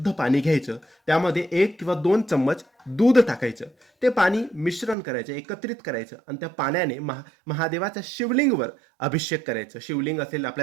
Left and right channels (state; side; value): drops out; left; at 5.0 s